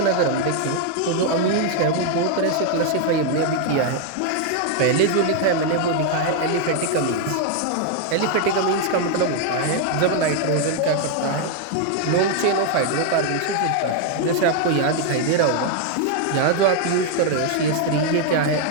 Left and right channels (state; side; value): different; both; correlation 0.00